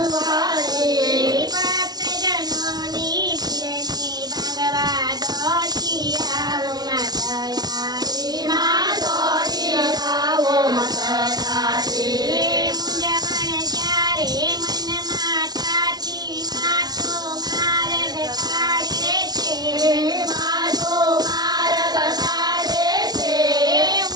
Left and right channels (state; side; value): late; left; 0.19 ms